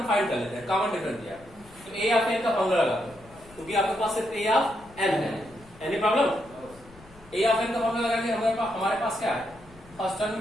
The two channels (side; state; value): left; noise; rumble, 23 dB below the sound